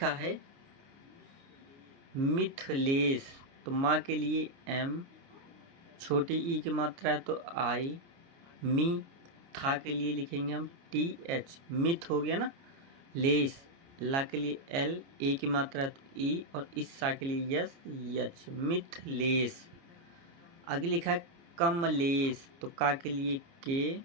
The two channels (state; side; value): late; left; 29 ms